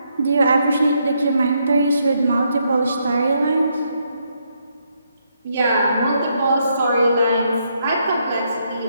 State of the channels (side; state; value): both; inverted; correlation -0.76